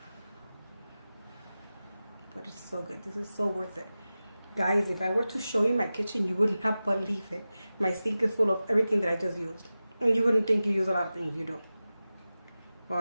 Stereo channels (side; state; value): both; inverted; correlation -0.95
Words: But it's so good. This is so worth it. Guys, if I were to show you my kitchen, you would not believe it. My sink is full of everything that I just used. And you wouldn't think you use a lot of things, you do.